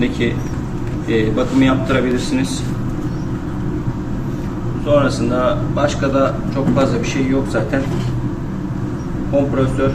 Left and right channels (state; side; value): identical; both; correlation 1.00